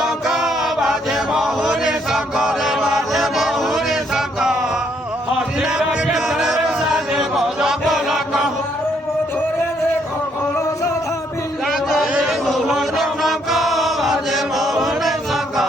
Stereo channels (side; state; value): both; normal; correlation 0.71